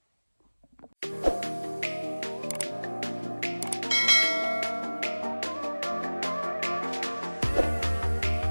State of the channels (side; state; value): both; inverted; correlation -1.00